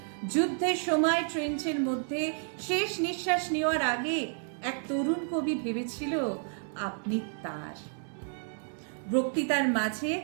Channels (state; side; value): silent; left; 57 dB below the other